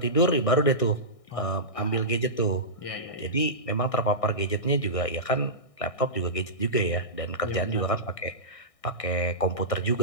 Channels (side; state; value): right; late; 1.6 ms